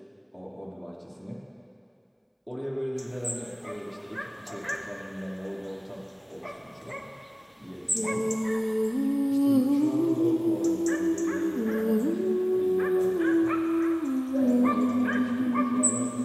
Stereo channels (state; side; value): identical; both; correlation 1.00